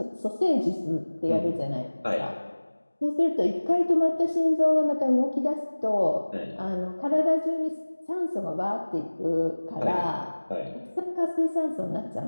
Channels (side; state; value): both; inverted; correlation -1.00